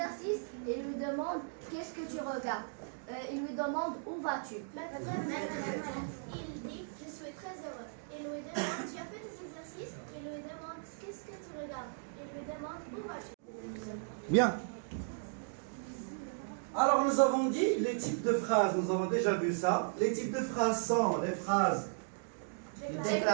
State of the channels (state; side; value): silent; left; digital silence